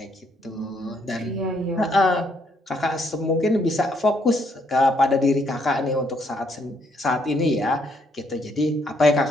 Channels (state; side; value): normal; both; correlation 0.71